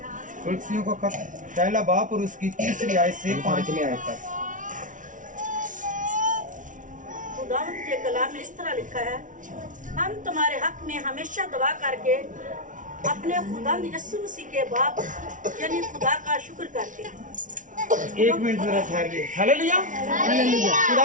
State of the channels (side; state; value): left; late; 0.37 ms